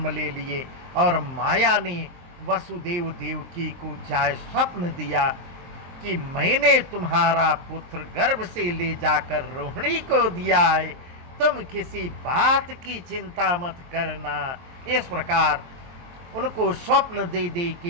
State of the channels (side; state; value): left; late; 23 ms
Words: ले लिए और माया ने वसुदेव देवकी को जाय स्वप्न दिया कि मैंने तुम्हारा पुत्र गर्भ से ले जाकर रोहिणी को दिया है, तुम किसी बात की चिंता मत करना। इस प्रकार उनको स्वप्न दे दे